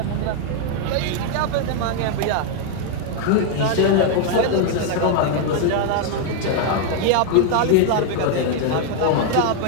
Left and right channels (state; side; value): different; both; correlation 0.00